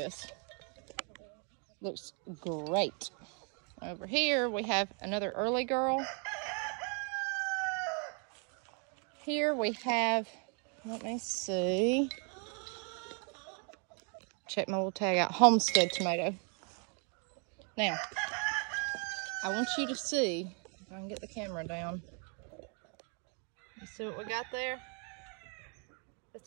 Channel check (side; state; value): left; quieter; 38.6 dB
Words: Looks great. Over here we have another early girl. Here we have, let me see, check my little tag out, Homestead tomato. Now, I want you to see, if I can get the camera down, you see what we got there?